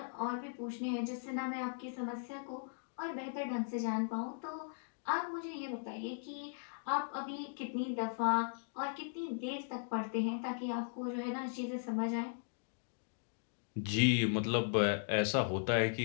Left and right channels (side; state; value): right; silent; digital silence